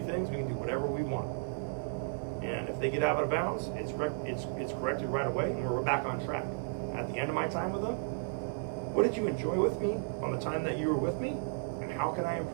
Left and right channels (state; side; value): silent; left; digital silence